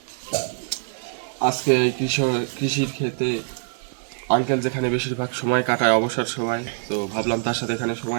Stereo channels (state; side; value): silent; left; digital silence